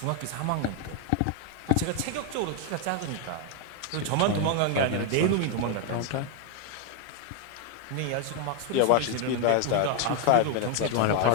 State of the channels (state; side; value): different; both; correlation 0.01